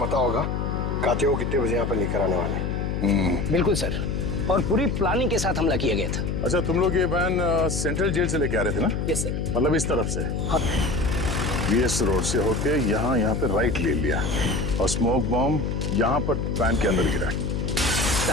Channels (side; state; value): left; noise; hum, 1 dB below the sound